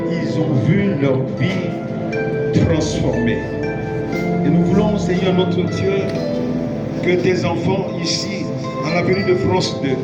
ils ont vu leur vie transformée. Et nous voulons, Seigneur notre Dieu, que tes enfants ici, à l'avenue de France 2,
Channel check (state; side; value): identical; both; correlation 1.00